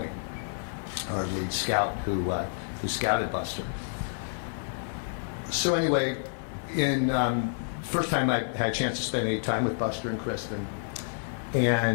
our lead scout who scouted Buster. So anyway, in first time I had a chance to spend any time with Buster and Kristen,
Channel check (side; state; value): right; silent; digital silence